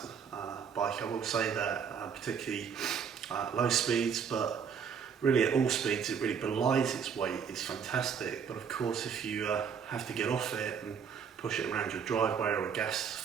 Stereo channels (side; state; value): left; quieter; 7.0 dB